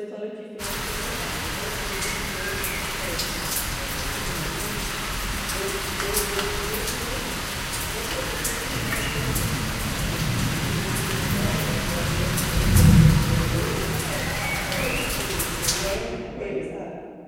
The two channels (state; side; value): identical; both; correlation 1.00